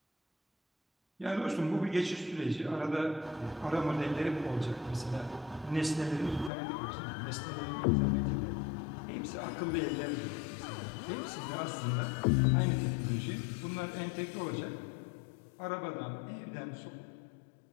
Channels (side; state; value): right; drops out; at 6.5 s